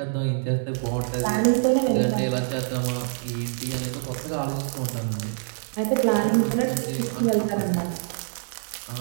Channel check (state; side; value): silent; left; digital silence